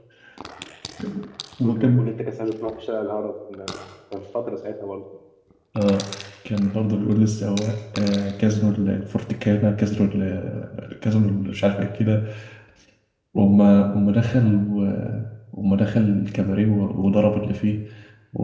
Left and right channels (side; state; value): both; identical; correlation 1.00